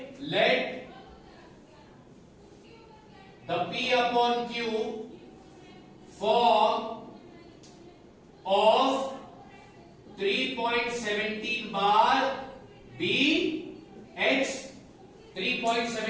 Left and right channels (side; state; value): both; identical; correlation 1.00